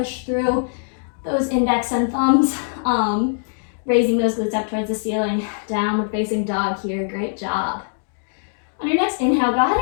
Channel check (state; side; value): silent; right; digital silence